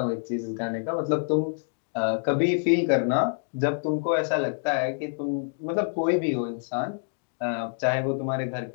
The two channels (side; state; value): right; silent; digital silence